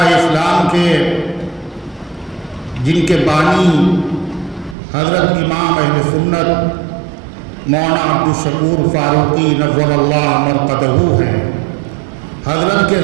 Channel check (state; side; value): drops out; left; at 4.8 s